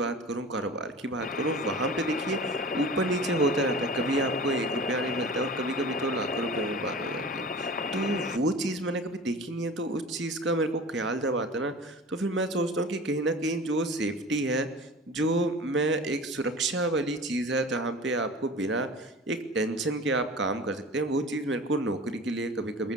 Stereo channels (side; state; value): both; normal; correlation 0.38